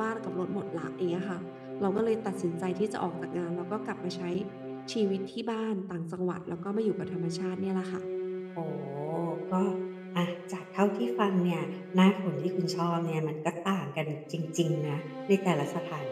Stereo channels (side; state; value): both; identical; correlation 1.00